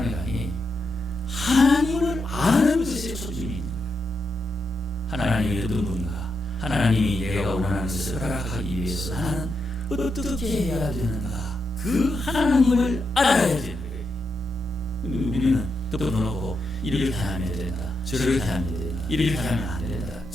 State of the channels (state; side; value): normal; both; correlation 0.83